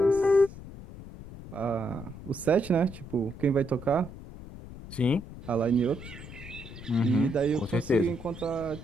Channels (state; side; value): noise; left; rumble, 14 dB below the sound